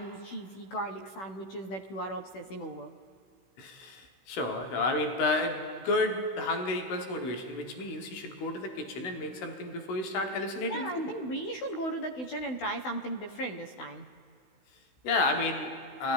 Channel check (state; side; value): late; right; 16 ms